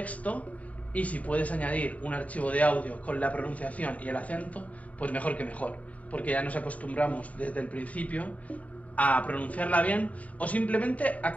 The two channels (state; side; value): late; right; 0.069 ms